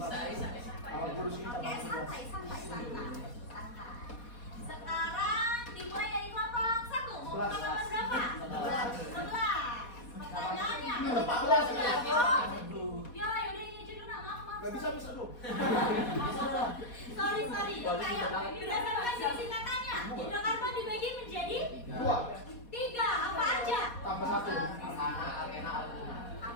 Oke, santai. Sekarang dimulai dari kelompok 1. Mau buka nomor berapa? 11. Pertanyaannya. Ya, yaudah ini aja dulu, maaf. Gak bisa dong. Sorry. Ayo, berdasarkan singkatannya, hidrokarbon dibagi menjadi 3. Apa aja? Tambah 1. Alkena, alkuna.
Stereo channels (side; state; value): right; late; 4.2 ms